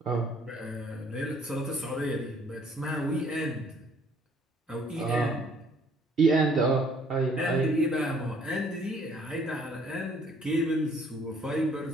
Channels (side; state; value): both; normal; correlation 0.60